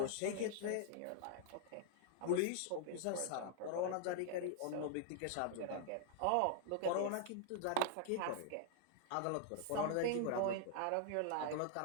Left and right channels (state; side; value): different; both; correlation 0.00